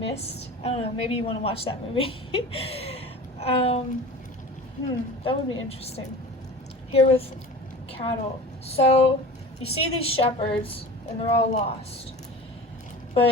I don't know, maybe you want to watch that movie. That would be interesting. Here with cattle. So, you see these shepherds, and they're all lost.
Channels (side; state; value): both; normal; correlation 0.36